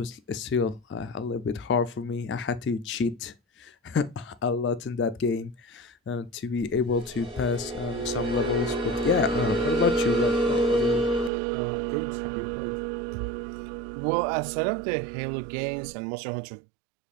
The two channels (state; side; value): drops out; left; at 11.3 s